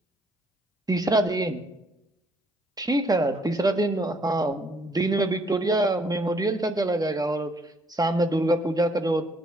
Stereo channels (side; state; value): both; normal; correlation 0.66